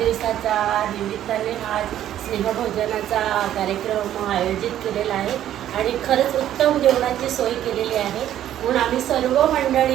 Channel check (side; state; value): left; quieter; 11.6 dB